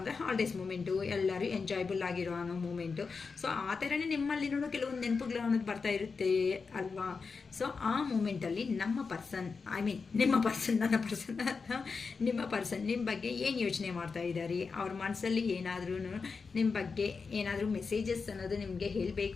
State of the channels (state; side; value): quieter; right; 4.9 dB